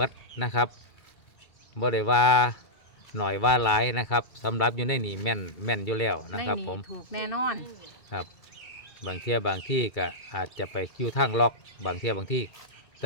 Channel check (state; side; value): late; right; 2.3 ms